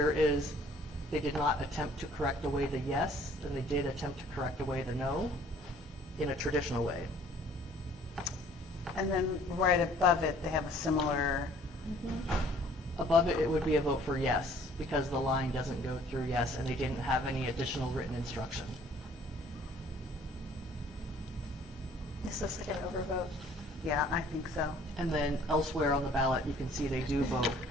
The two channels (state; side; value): normal; both; correlation 0.56